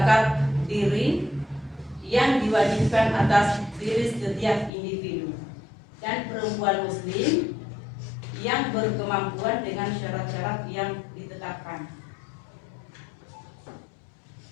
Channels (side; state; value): right; drops out; at 4.7 s